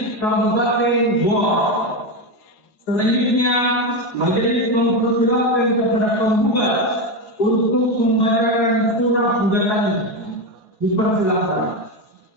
Kabupaten Goa. Selanjutnya, majelis mempersilahkan kepada penggugat untuk membacakan surat gugatannya. Dipersilahkan.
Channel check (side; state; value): right; late; 4.7 ms